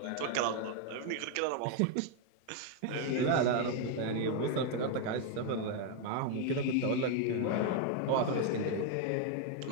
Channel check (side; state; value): both; different; correlation 0.00